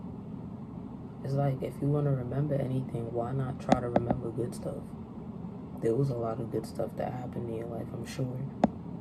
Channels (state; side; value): identical; both; correlation 1.00